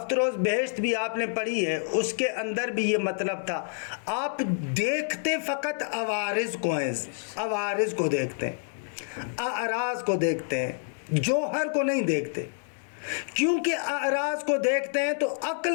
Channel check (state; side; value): silent; right; digital silence